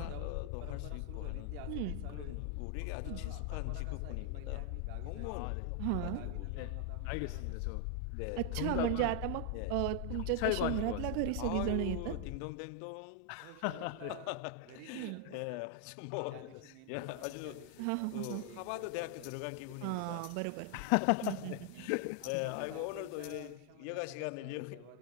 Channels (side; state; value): both; different; correlation 0.00